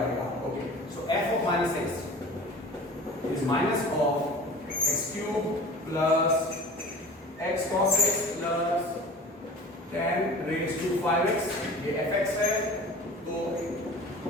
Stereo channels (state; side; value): normal; both; correlation 0.40